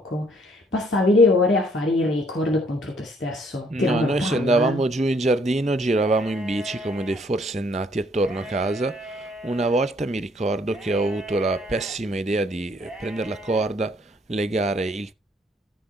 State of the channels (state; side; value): normal; both; correlation 0.65